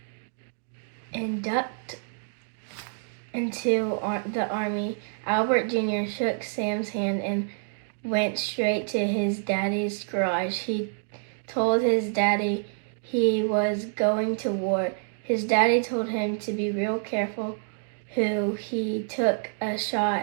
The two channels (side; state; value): left; silent; digital silence